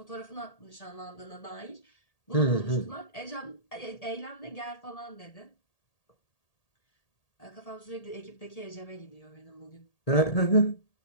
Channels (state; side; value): late; right; 1.8 ms